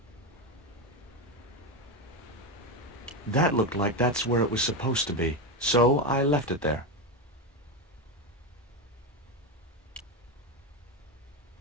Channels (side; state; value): both; normal; correlation 0.13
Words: That looked like that's where it was supposed to be, so I left it there.